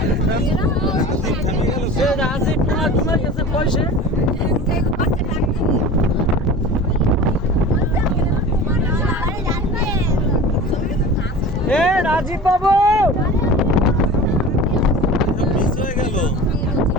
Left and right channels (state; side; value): normal; both; correlation 0.36